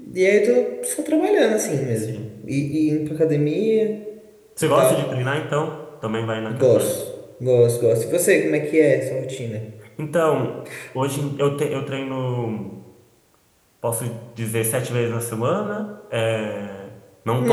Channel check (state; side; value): identical; both; correlation 1.00